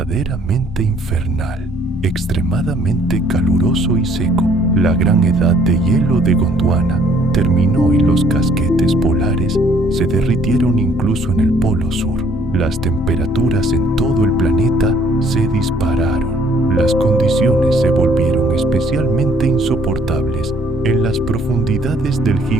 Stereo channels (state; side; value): normal; both; correlation 0.62